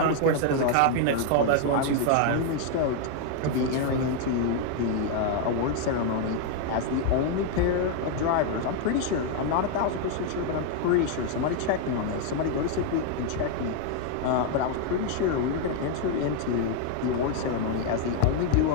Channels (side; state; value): both; different; correlation 0.00